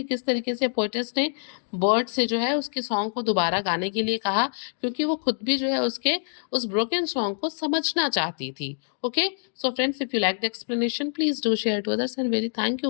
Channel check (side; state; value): right; silent; digital silence